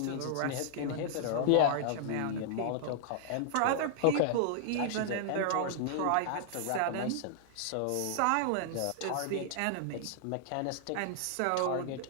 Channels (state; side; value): different; both; correlation -0.01